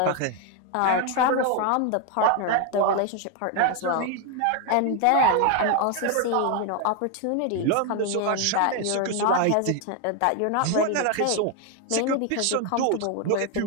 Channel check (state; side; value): different; both; correlation 0.01